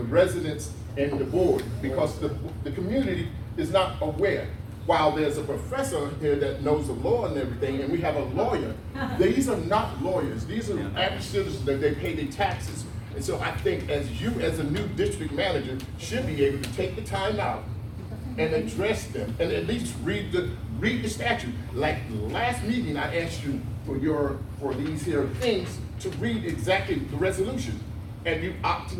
and the board, because the community is not aware. While there's a professor here that knows the law and everything, and we have a lawyer, these are not lawyers. These are average citizens that they pay their taxes. And so I think as a new district manager, should be able to take the time out and address them, and at least read the statute. Like last meeting, I asked you for these here things to read exactly the resolution, and you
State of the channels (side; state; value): both; identical; correlation 1.00